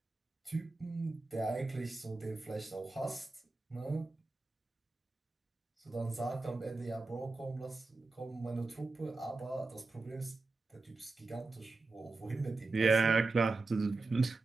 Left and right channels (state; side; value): quieter; left; 3.4 dB